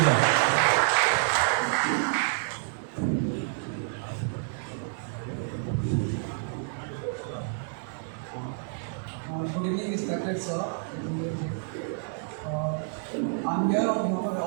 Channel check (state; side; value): silent; left; digital silence